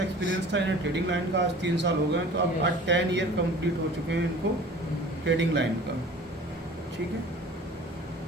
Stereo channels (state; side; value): normal; both; correlation 0.44